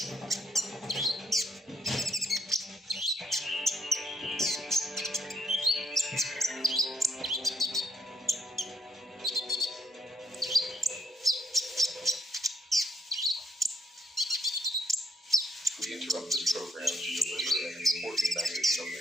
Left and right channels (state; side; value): normal; both; correlation 0.75